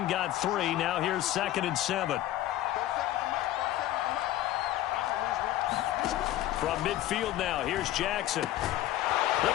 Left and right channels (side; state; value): right; quieter; 14.1 dB